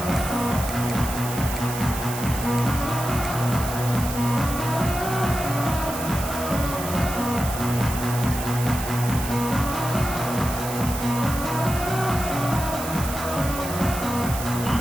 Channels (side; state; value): right; noise; hiss, 9 dB below the sound